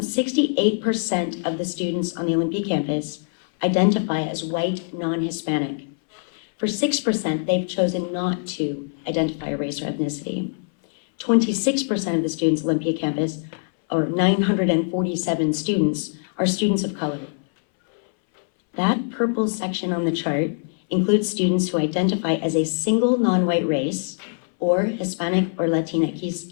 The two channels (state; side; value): silent; right; 63 dB below the other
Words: of the students on the Olympia campus identify as white, non-Hispanic. For 6%, they've chosen not to identify a race or ethnicity. 26% of the students at Olympia campus, or 947 students, are students of color. That purple section on the chart includes students who identify as a single non-white race or Hispanic or